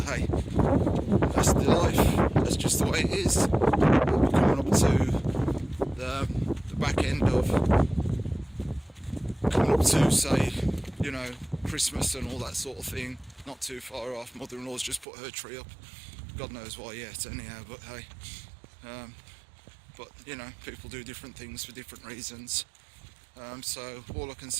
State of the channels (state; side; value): drops out; left; at 15.1 s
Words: hey, that's the life. That's just the way it is. We're coming up to the back end of coming up to, say, you know, Christmas and all that sort of thing. Not too far off. Mother-in-law's just put her tree up. God knows why yet, anyhow. But hey, but you know, people do different things for different reasons. So all I can